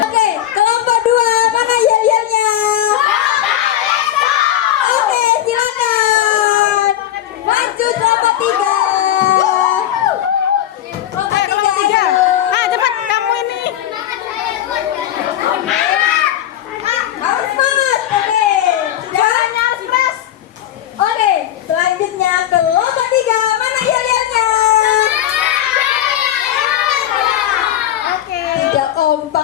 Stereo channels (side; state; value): right; quieter; 12.0 dB